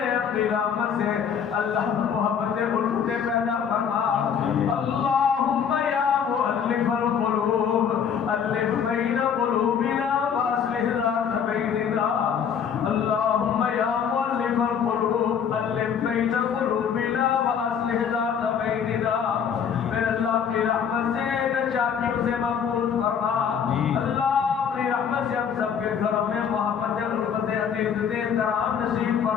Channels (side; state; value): right; quieter; 7.5 dB